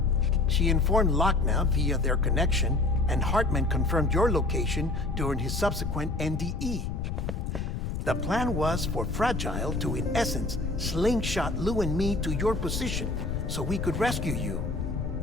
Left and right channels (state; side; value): noise; left; rumble, 3 dB below the sound